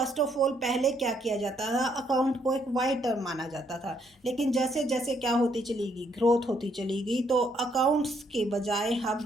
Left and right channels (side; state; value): both; normal; correlation 0.71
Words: ऑफ ऑल पहले क्या किया जाता था, अकाउंट को एक वाइड टर्म माना जाता था, लेकिन जैसे जैसे क्या होती चली गई, ग्रोथ होती चली गई, तो अकाउंट्स के बजाय हम